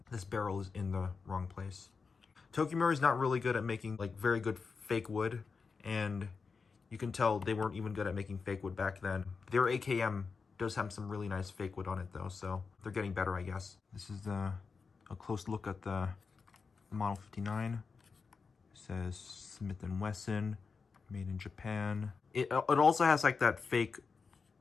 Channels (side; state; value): right; quieter; 5.0 dB